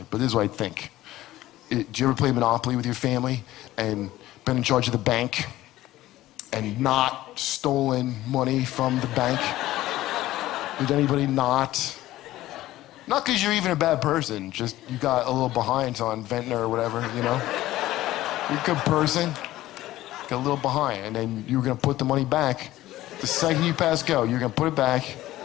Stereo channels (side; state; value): right; quieter; 15.6 dB